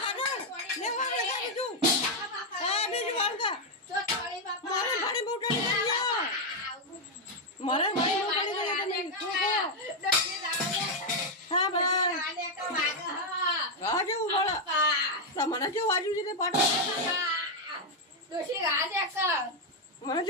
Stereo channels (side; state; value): both; normal; correlation 0.01